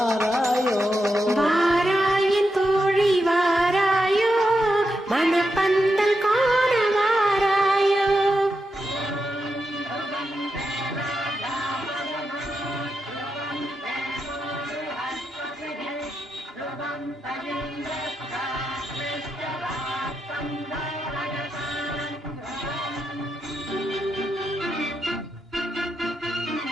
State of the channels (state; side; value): normal; both; correlation 0.86